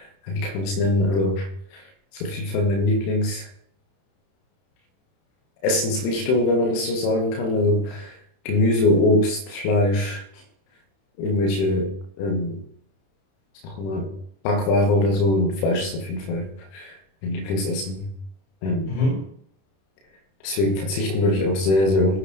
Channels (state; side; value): late; right; 31 ms